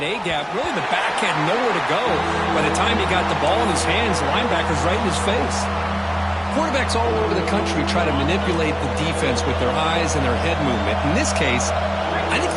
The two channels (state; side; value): identical; both; correlation 1.00